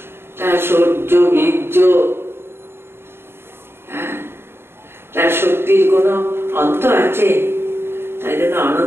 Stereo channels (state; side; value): late; left; 0.11 ms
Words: তার সৌর্য বীর্য, তার শক্তির কোনো অন্ত আছে? তাই জন্য